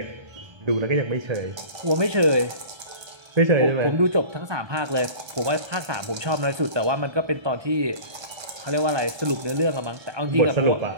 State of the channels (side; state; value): left; late; 1.3 ms